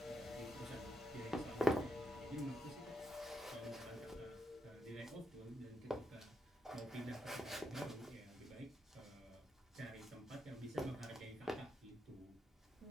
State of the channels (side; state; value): both; normal; correlation 0.82